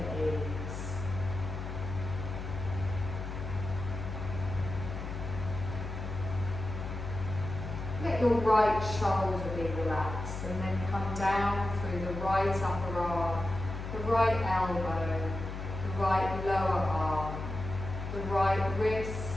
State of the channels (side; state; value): left; noise; hum, 6 dB below the sound